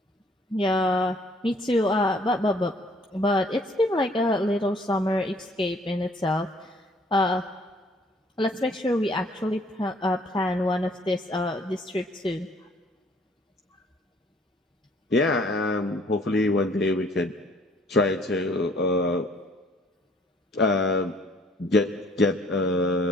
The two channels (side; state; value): both; normal; correlation 0.59